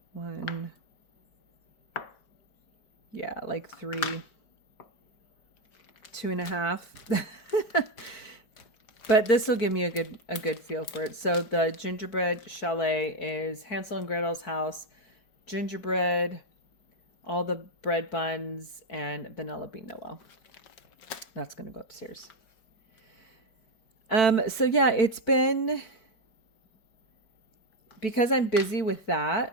one, yeah, like 3, 2.5. But this will give me a good feel for it. So the Gingerbread Chalet is Hansel and Gretel's house, gingerbread, all the bread buns, and Vanilla Bean Noel. That's going to go upstairs. So yeah, it's been, because I'm busy with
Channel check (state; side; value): late; right; 4.5 ms